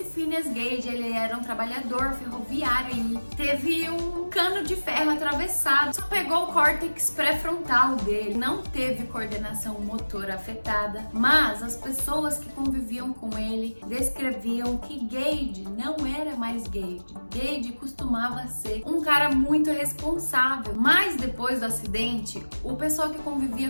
Phineas Gage, ele era um trabalhador ferroviário e teve um cano de ferro atravessado. Só pegou o córtex pré-frontal dele. Não teve coordenação motora afetada, mas as pessoas que conviviam com ele descreviam que Gage não era mais Gage. Gage costumava ser um cara muito responsável, mas depois do acidente, o pessoal que convivia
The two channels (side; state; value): both; inverted; correlation -1.00